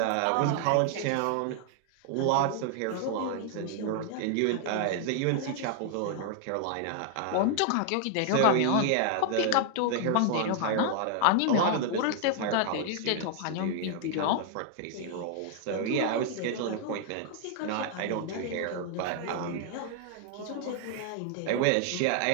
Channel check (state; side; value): different; both; correlation 0.00